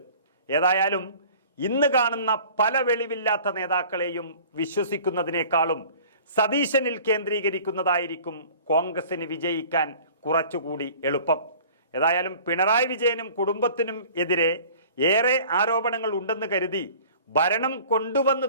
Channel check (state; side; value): inverted; both; correlation -0.46